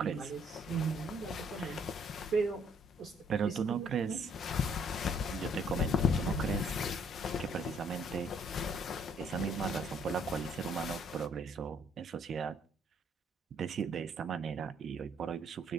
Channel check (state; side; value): normal; both; correlation 0.65